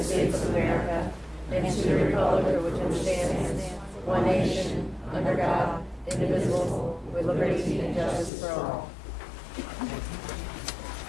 States of America and to the republic for which it stands, one nation, under God, indivisible, with liberty and justice for all.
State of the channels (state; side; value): drops out; right; at 8.3 s